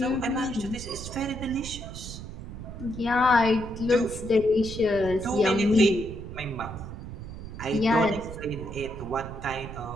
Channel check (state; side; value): noise; right; rumble, 10 dB below the sound